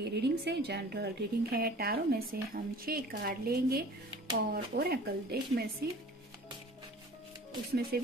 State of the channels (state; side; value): normal; both; correlation 0.45